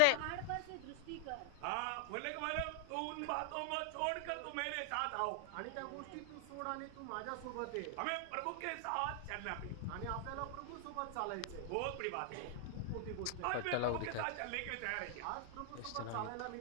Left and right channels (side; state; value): both; different; correlation 0.00